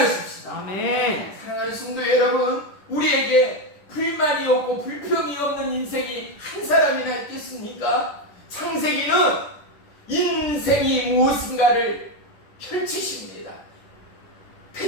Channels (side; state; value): right; late; 10 ms